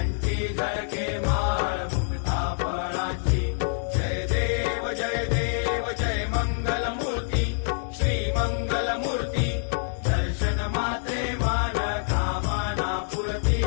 झळके माळ मुक्ता फळाची। जय देव जय देव जय मंगल मूर्ती श्री मंगल मूर्ती दर्शन मात्रे मान कामना पूर्ती।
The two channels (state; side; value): silent; right; digital silence